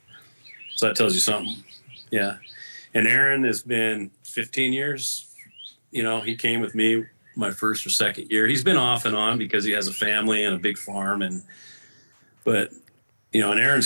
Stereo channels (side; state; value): both; inverted; correlation -1.00